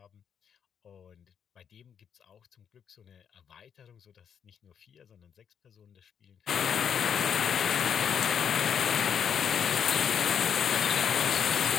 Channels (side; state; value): right; quieter; 7.9 dB